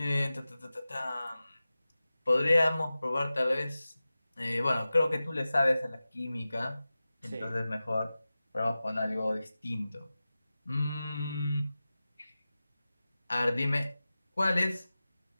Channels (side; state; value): both; inverted; correlation -0.95